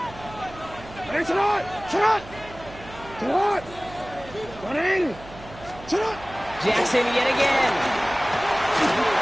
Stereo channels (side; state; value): right; noise; hum, 17 dB below the sound